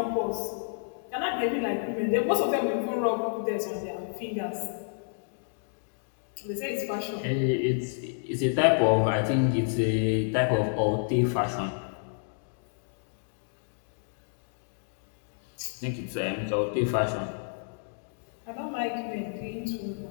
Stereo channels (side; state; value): right; silent; digital silence